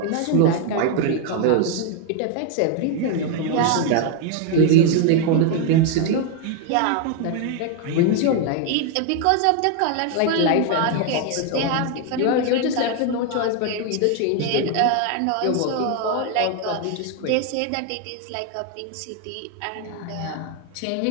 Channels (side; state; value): both; different; correlation 0.01